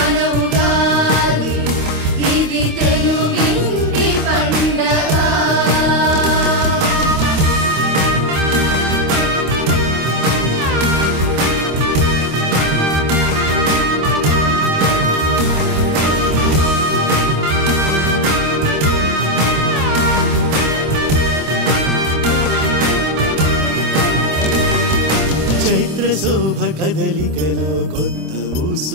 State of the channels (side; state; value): left; late; 25 ms